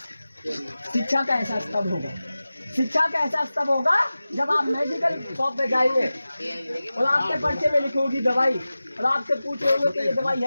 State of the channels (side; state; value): both; inverted; correlation -0.96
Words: शिक्षा का एहसास तब होगा। शिक्षा का एहसास तब होगा जब आप मेडिकल शॉप पे जाएंगे और आपके पर्चे में लिखी होगी दवाई और आपसे पूछ रहे होंगे कि ये दवाई